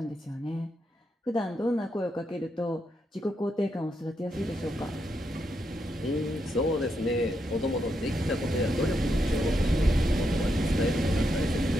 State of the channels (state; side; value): normal; both; correlation 0.82